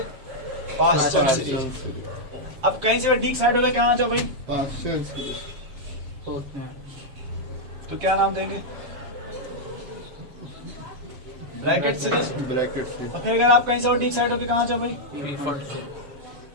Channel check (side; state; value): left; late; 7.3 ms